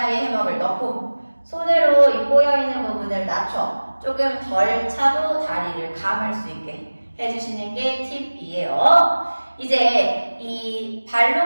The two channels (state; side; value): inverted; both; correlation -1.00